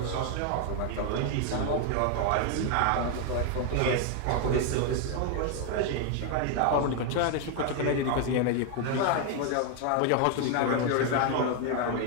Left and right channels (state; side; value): different; both; correlation 0.01